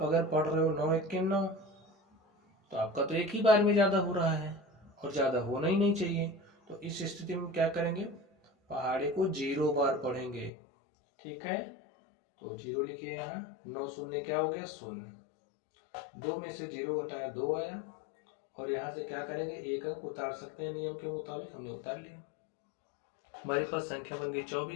अगर पढ़ रहे हो 9 1 के 9, तो आपका तो एक ही बार में ज़्यादा हो रहा है और ज़्यादा होना ही नहीं चाहिए। तो इस स्थिति में क्या करेंगे, पहाड़े को 0 बार पढ़ेंगे, ठीक है। तो 0 लिखिए यहाँ। 9 शून्य क्या हो गया 0। 2 में से 0 घटाया 2 आया, और यहाँ से क्या करेंगे, 1 अंक उतार सकते हैं नियम के मुताबिक, हमने उतार लिया। हमारे पास संख्या बन गई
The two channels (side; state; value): right; drops out; at 10.5 s